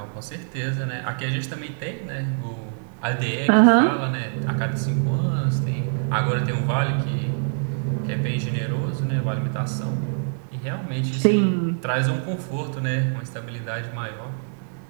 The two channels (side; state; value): left; silent; 62 dB below the other